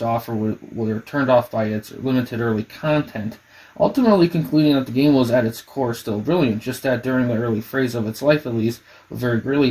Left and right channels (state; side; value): identical; both; correlation 1.00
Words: offer were turned off by its limited early content, ultimately concluding that the game was at its core still brilliant, just that during the early phase of its life at least, was very